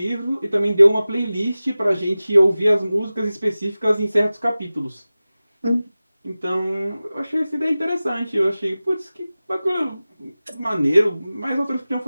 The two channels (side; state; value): both; inverted; correlation -0.97